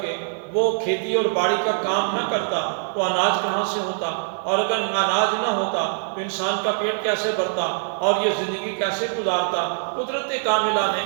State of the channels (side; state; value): left; silent; digital silence